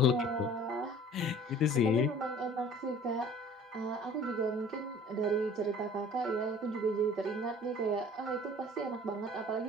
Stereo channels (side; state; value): both; normal; correlation 0.47